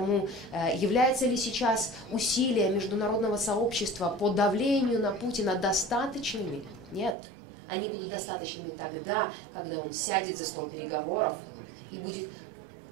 являются ли сейчас усилия международного сообщества по давлению на Путина достаточными? Нет. Они будут достаточными тогда, когда он сядет за стол переговоров и будет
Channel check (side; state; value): left; drops out; at 7.2 s